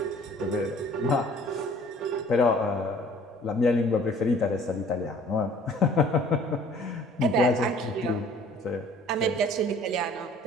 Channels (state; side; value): normal; both; correlation 0.53